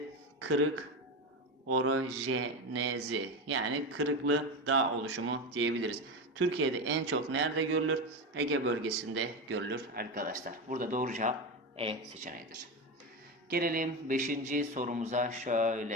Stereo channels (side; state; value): both; normal; correlation 0.18